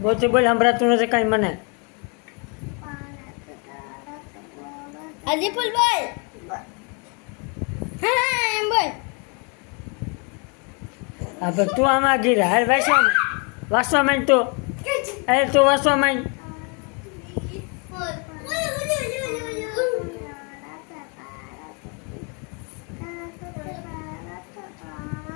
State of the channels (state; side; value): quieter; right; 34.8 dB